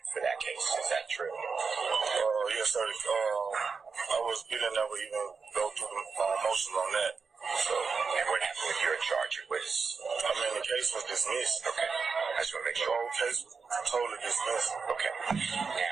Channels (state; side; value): quieter; left; 5.1 dB